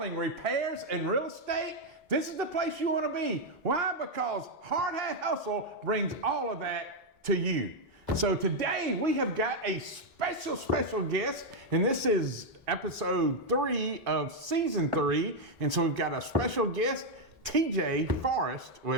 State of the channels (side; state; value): both; normal; correlation 0.01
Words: repairs, and real estate, this is the place you want to be. Why? Because Hardhat Hustle brings all of that to you. So today we have got a special guest, and this is episode 3 of season 3. And so we've got a special guest, TJ Forrest,